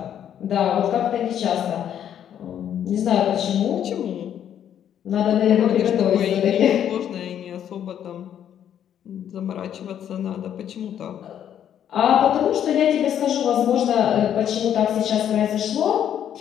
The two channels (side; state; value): right; quieter; 9.8 dB